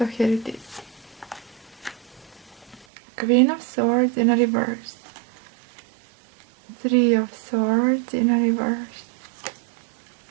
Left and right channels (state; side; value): drops out; left; at 2.9 s